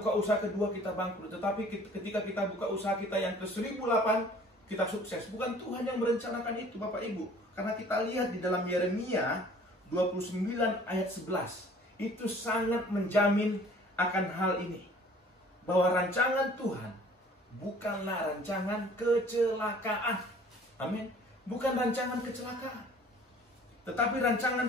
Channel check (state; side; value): normal; both; correlation 0.52